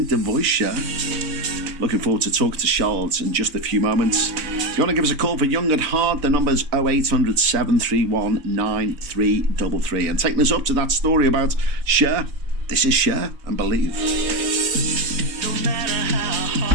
voice, Cher. Looking forward to talking to Charlotte in just a few moments. If you want to give us a call for Young at Heart, the number's 0800 731 9333. And taking us up to that story about Cher, this is Cher and Believe. No matter how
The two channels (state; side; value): late; left; 4.0 ms